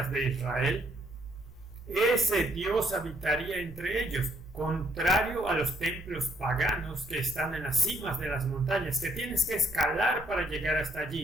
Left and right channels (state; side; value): normal; both; correlation 0.68